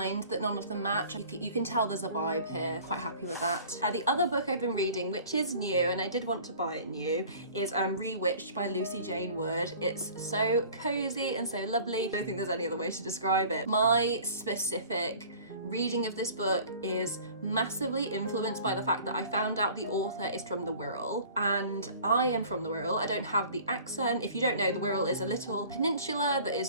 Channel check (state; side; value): inverted; both; correlation -0.46